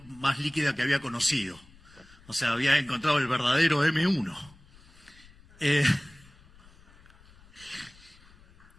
más líquida que había conocido. O sea, había encontrado el verdadero M1.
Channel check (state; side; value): noise; left; rumble, 25 dB below the sound